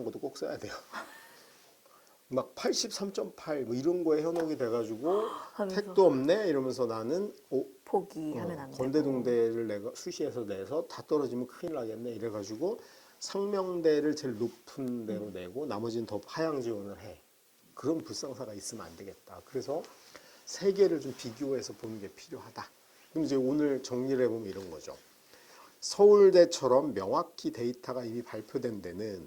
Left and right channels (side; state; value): both; identical; correlation 1.00